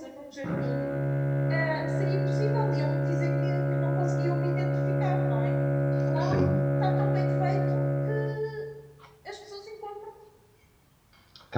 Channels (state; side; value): identical; both; correlation 1.00